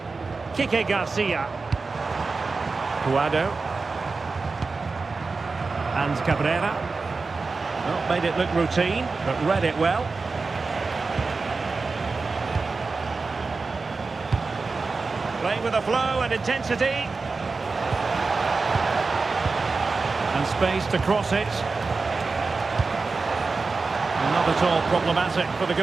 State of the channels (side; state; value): left; quieter; 4.1 dB